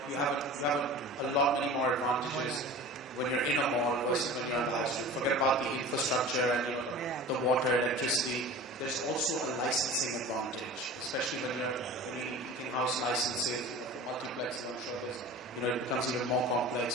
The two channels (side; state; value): both; normal; correlation 0.38